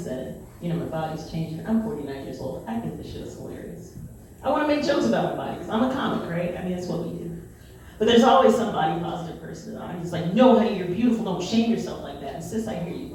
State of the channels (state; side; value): identical; both; correlation 1.00